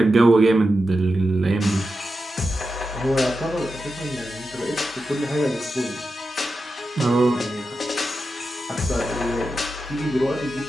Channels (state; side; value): normal; both; correlation 0.90